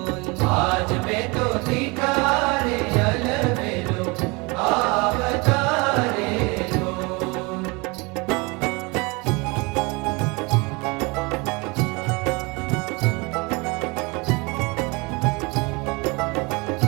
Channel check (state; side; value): quieter; left; 27.4 dB